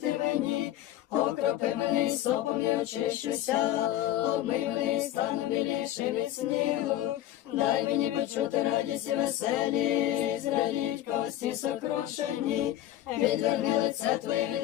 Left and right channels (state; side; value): quieter; right; 13.4 dB